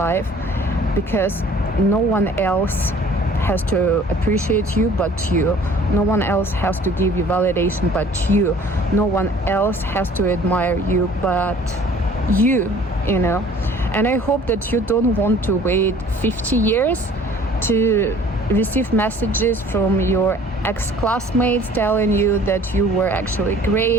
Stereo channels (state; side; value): normal; both; correlation 0.51